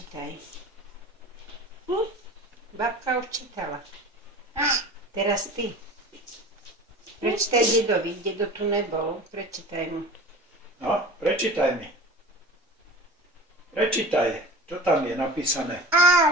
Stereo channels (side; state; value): both; normal; correlation 0.37